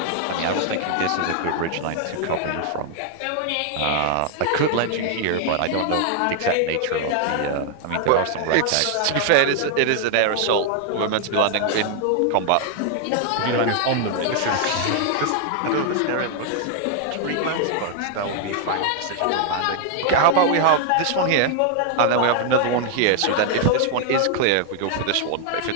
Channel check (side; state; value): both; different; correlation 0.00